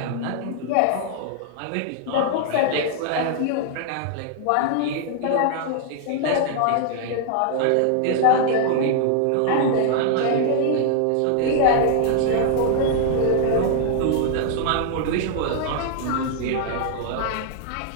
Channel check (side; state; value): both; different; correlation 0.00